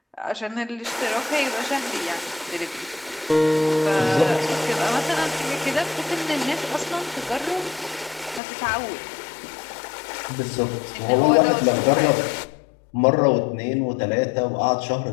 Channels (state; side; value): drops out; right; at 8.4 s